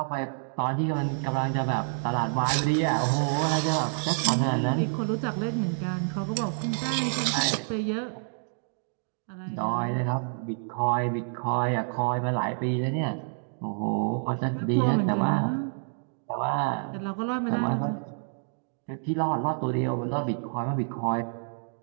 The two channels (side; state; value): left; silent; digital silence